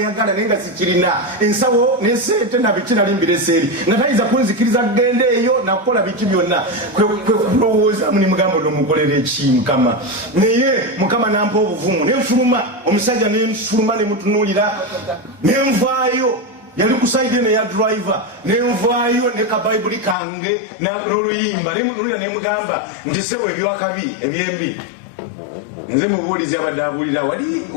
naye nga sikirina ensawo nesente nabiki nali mbireseeri nga tayinza kunzikiriza kugenda eyo nakukola biki byonna. Kwe kulowoozamu nimugamba nomukolera eki Mukama naye Mukama nampa obuvumu nenfuluma omusajja nenfuluma nemutunuulira nenvaayo yali kusaide ne ya driver nenvaayo ne ka bayibuli kange n'oluyimba nemutunuulira nemugamba nti sewe ebyakabi ebyembi nze mubuulizi abadde abuulira wali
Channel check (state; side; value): drops out; right; at 20.2 s